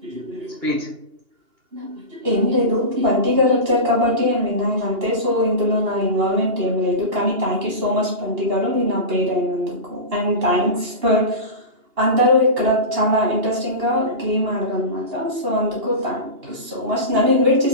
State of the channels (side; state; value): left; late; 2.8 ms